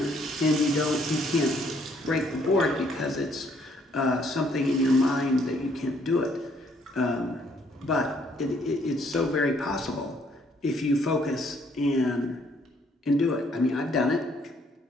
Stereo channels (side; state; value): both; normal; correlation 0.66